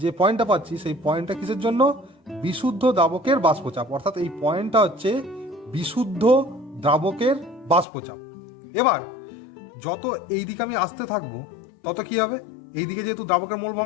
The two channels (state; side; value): drops out; right; at 7.9 s